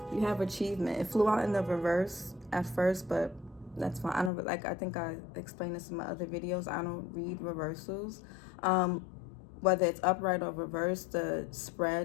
you have achievement. It flew out in the reverse at first, but that's fine. I don't like, I think I explained this in my other videos. I don't read reversals. Whether it's upright or reverse, the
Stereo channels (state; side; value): drops out; right; at 4.3 s